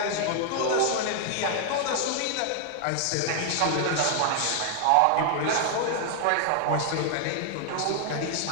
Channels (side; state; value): both; different; correlation 0.00